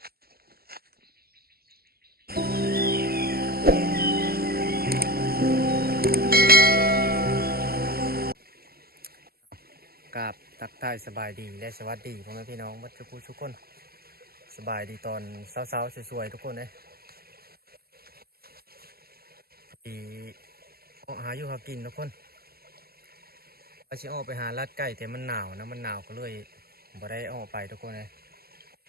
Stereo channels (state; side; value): late; left; 0.45 ms